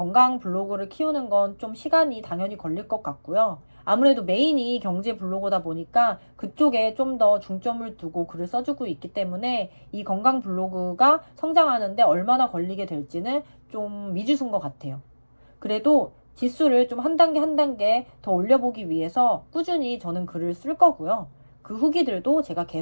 블로그를 키우는 건 좀 시간이 당연히 걸릴 것 같고요. 아무래도 메인이 경제 블로거다 보니까 그쪽에 좀 더 중점을 두고 글을 써주고 있기 때문에 이 건강 블로그가 성장하는데 얼마나 걸리게 될지는 좀 미지수인 것 같아요. 그래도 지수를 좀 한 단계 한 단계 더 올려보기 위해서 꾸준히 저는 글을 쓸 거고요. 그 후기들도 제가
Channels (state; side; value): inverted; both; correlation -1.00